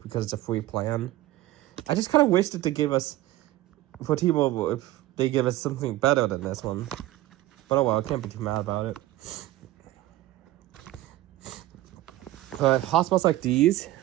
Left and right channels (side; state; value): left; quieter; 15.8 dB